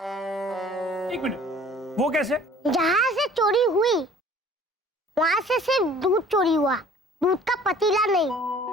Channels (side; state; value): both; normal; correlation 0.51